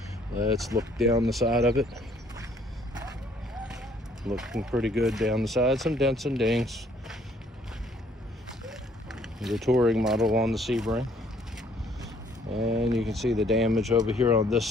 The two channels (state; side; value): normal; both; correlation 0.62